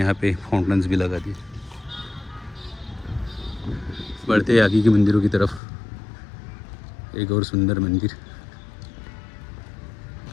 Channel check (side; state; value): right; drops out; at 5.6 s